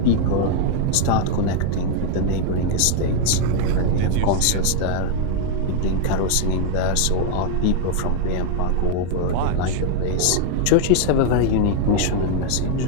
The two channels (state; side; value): different; both; correlation 0.00